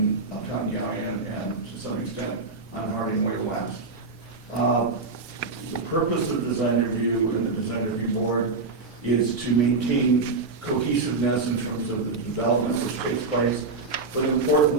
Uptown Galleon and to some extent on Harding Way West. The purpose of design review and the design review board is to maintain cohesiveness in terms of the development which takes place, but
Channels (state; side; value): quieter; left; 3.9 dB